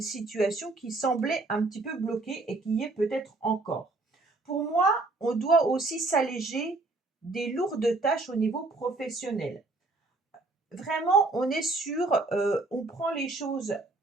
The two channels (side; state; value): left; quieter; 3.2 dB